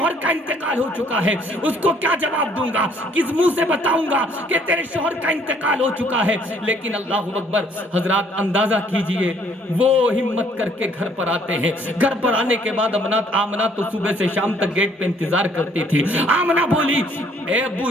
کا انتقال ہو چکا ہے، اس کو کیا جواب دوں گا؟ کس منہ سے بتاؤں گا کہ تیرے شوہر کا انتقال ہو چکا ہے؟ لیکن اللہ اکبر حضرات اندازہ کیجئے وہ ہمت کر کے گھر پر آتے ہیں۔ گھر پر آنے کے بعد آمنہ تو صبح سے شام تک گیٹ پہ انتظار کرتی تھی۔ آمنہ بولی اے ابو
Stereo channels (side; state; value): both; normal; correlation 0.62